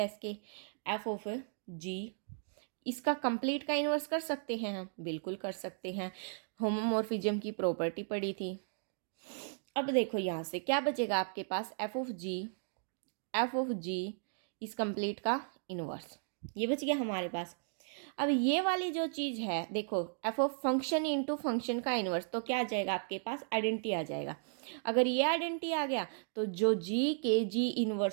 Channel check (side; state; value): left; silent; digital silence